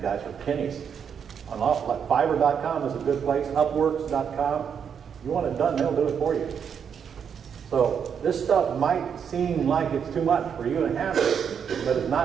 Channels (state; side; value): quieter; left; 7.4 dB